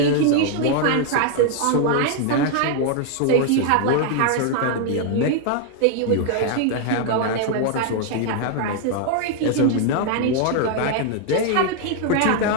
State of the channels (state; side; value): different; both; correlation 0.00